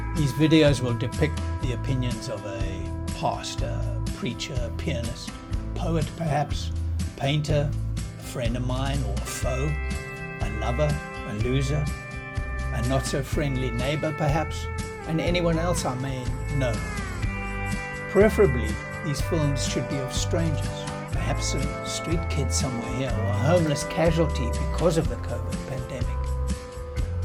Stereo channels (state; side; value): identical; both; correlation 1.00